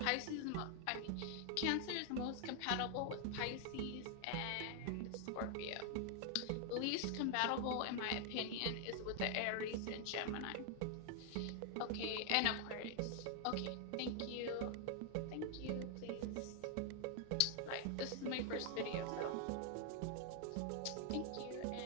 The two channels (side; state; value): both; different; correlation 0.00